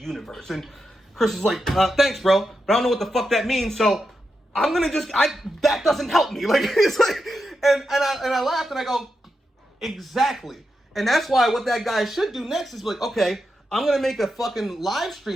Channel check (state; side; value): normal; both; correlation 0.87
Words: And Chris is like, thanks, bro, but I don't know what the fuck that means, so I'm going to that doesn't help me. Like, it's like, and I laughed and I go, exactly. And that's why what that guy should do next is like, okay, I'm going to make a fucking live